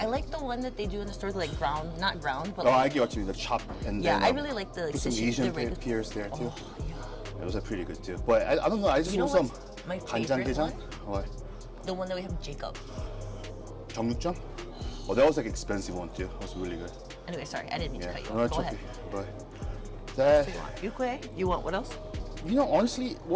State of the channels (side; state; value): both; identical; correlation 1.00